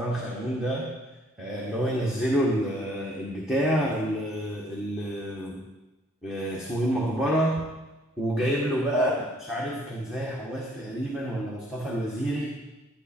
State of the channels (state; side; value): normal; both; correlation 0.63